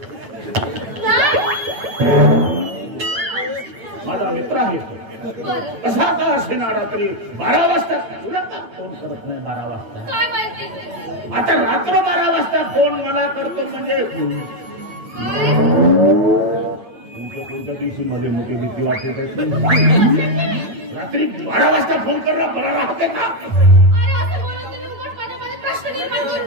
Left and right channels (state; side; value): late; left; 9.0 ms